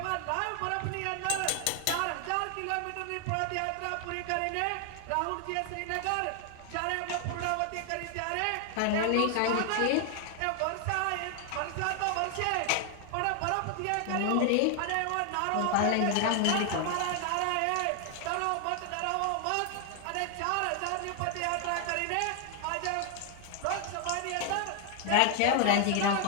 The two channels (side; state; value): both; different; correlation 0.00